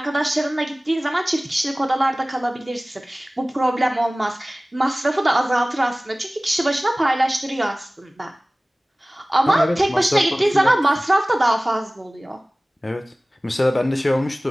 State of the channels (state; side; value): normal; both; correlation 0.98